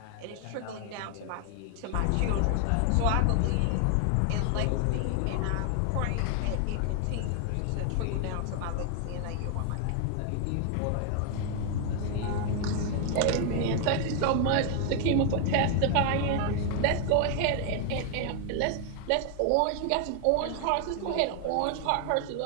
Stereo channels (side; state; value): both; different; correlation 0.00